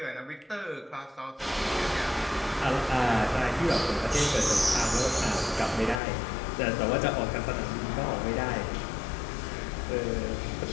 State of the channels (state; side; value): drops out; right; at 6.0 s